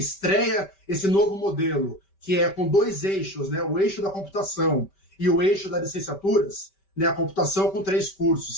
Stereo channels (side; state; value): right; late; 5.2 ms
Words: esse novo modelo, que é com dois eixos, né, o eixo da computação e o eixo das licenciaturas, né, a computação com 3